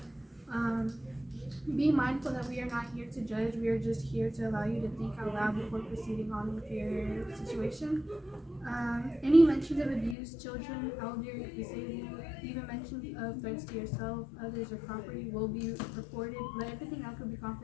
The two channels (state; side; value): drops out; right; at 10.2 s